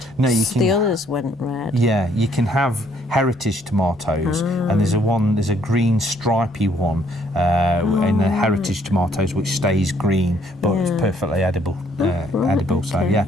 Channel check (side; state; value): both; normal; correlation 0.66